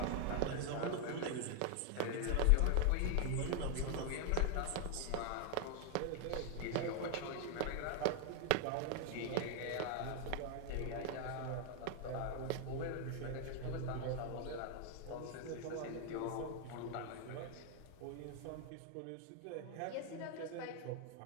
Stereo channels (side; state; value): both; different; correlation 0.00